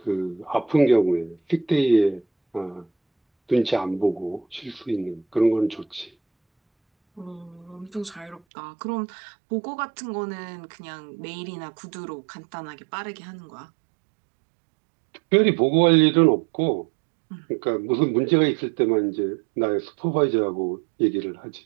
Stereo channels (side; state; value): left; drops out; at 8.4 s